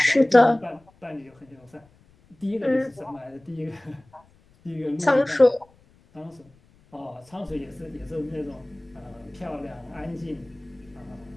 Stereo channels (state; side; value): noise; left; rumble, 30 dB below the sound